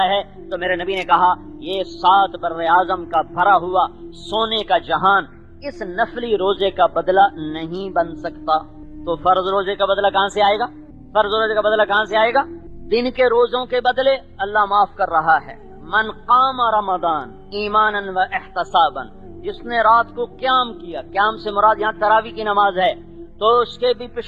ہے. تو میرے نبی نے کہا یہ 7 بر اعظم کا بھرا ہوا سونے کا جہان اس نفلی روزے کا بدلہ نہیں بن سکتا، تو فرض روزے کا بدلہ کہاں سے آئے گا؟ فرض روزے کا بدلہ کہاں سے آئے گا؟ دن کے روزوں کے بدلے اللہ معاف کر رہا ہے۔ من قام رمضان ایمانا و احتسابا، جس نے رات کو قیام کیا، قیام سے مراد یہاں تراویح کی نماز ہے، تو اس کے بھی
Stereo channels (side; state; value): both; identical; correlation 1.00